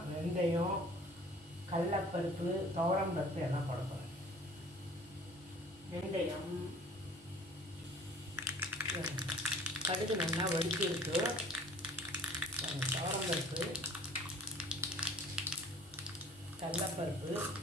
வெந்தயம், கடலைப்பருப்பு, துவரம் பருப்பு எல்லாம் போட போகிறேன். வெந்தயம், கடுகு நல்லா வடித்து இருக்கு. துவரம் பருப்பு, கடலைப்பருப்பு,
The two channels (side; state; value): both; normal; correlation 0.50